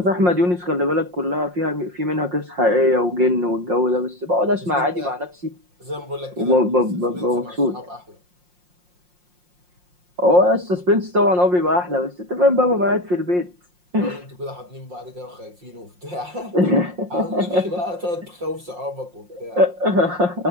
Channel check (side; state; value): left; late; 5.6 ms